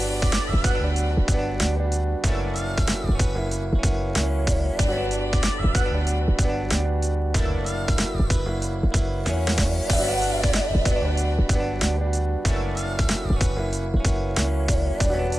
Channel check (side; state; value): both; normal; correlation 0.95